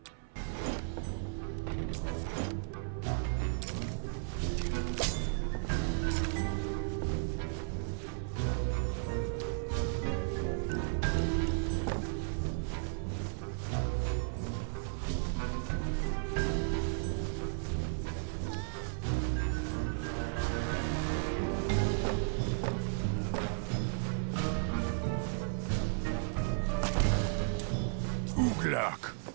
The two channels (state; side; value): silent; left; 55 dB below the other